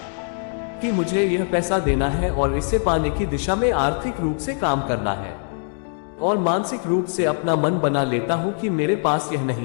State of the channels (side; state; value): right; silent; digital silence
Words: कि मुझे यह पैसा देना है और इसे पाने की दिशा में आर्थिक रूप से काम करना है, और मानसिक रूप से अपना मन बना लेता हूँ कि मेरे पास यह